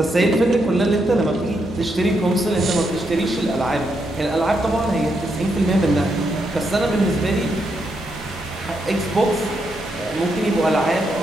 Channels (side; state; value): both; normal; correlation 0.80